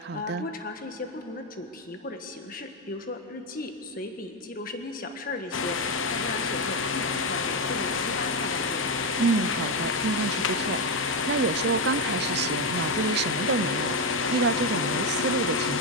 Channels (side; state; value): both; normal; correlation 0.08